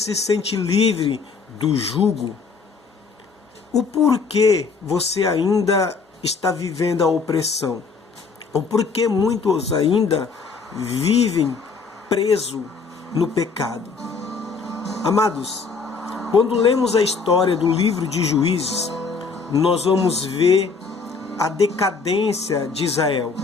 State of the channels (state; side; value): quieter; right; 4.9 dB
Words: sente livre do jugo? O porquê você ainda está vivendo a opressão? O porquê muitos ainda vivem presos no pecado? Amados, quando lemos a história do livro de Juízes, nós vamos ver a decadência de Israel,